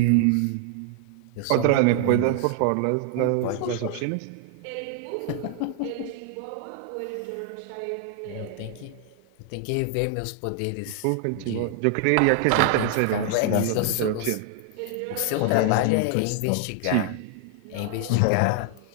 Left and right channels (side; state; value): both; different; correlation 0.00